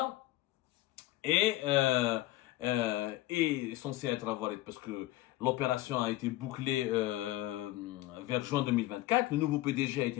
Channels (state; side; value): quieter; right; 16.7 dB